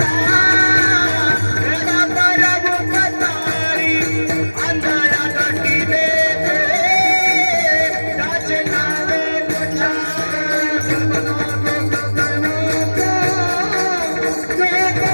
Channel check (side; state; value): both; inverted; correlation -1.00